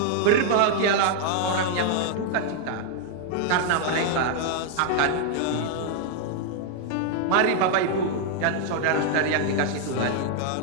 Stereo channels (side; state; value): both; different; correlation 0.00